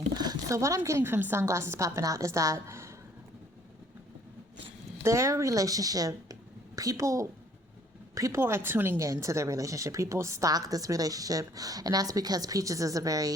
So what I'm getting from sunglasses popping out is that their relationship, people are tuning in to their relationship. People stalk this relationship, and that's because Peaches is a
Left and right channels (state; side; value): normal; both; correlation 0.60